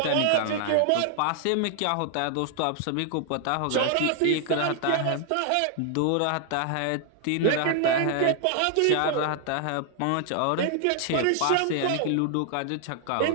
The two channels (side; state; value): both; different; correlation 0.00